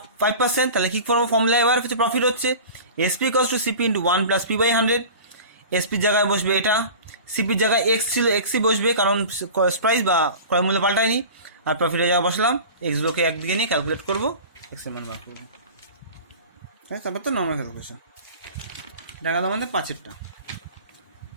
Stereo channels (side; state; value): both; inverted; correlation -0.37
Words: 5%, তাহলে কী করবো, ফর্মুলা এবার হচ্ছে প্রফিট হচ্ছে SP equals to CP into 1 plus P by 100। এসপির জায়গায় বসবে এটা, সিপির জায়গায় এক্স ছিল, এক্সই বসবে, কারণ প্রাইস বা ক্রয় মূল্য পাল্টায়নি, আর প্রফিটের জায়গায় বসলাম, এক্সগুলোকে একদিকে নিয়ে ক্যালকুলেট করবো, এক্সের মান বার করবো, হ্যাঁ, তারপর তো নর্মাল ক্যালকুলেশন। দেখা গেল আমাদের 5-এরটা।